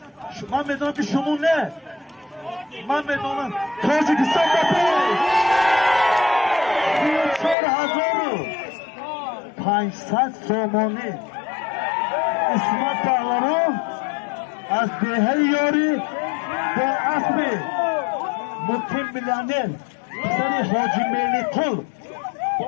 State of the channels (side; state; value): right; drops out; at 7.6 s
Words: من میدونم که شما نه من میدونم تاجیکستان بپی 4,500 سومانی اسمت پهلوان از دهه یاری با اسب مقیم میلیونر پسر حاجی میلی قل